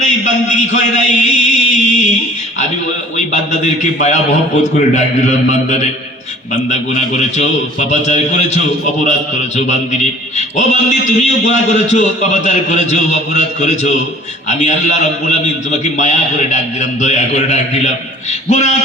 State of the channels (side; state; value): both; normal; correlation 0.48